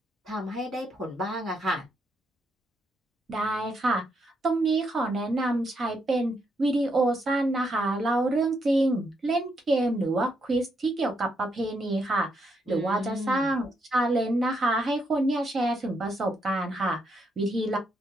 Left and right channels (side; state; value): both; normal; correlation 0.78